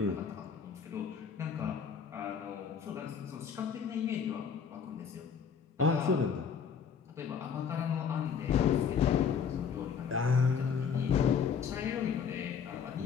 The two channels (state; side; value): quieter; right; 6.7 dB